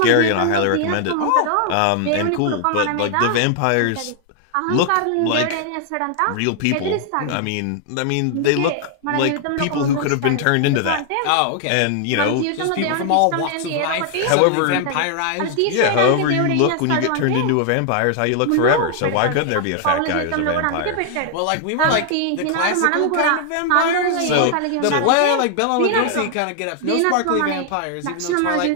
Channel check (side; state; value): both; different; correlation 0.00